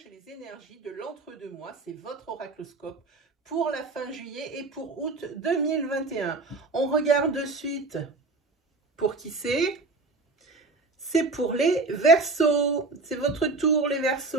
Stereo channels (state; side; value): quieter; left; 3.6 dB